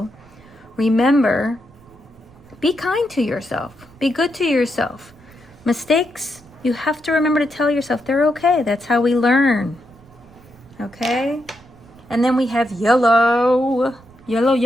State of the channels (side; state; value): right; noise; rumble, 26 dB below the sound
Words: remember, be kind to yourself. Be good to yourself. Mistakes, you have to remember to tell yourself they're okay. That's how we learn. Okay? And then we have yellow. Yellow,